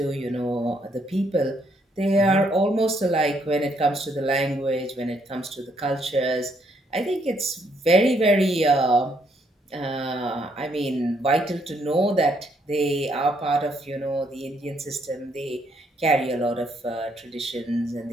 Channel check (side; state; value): both; normal; correlation 0.72